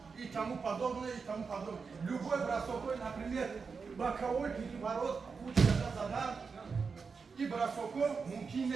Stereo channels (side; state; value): left; quieter; 5.2 dB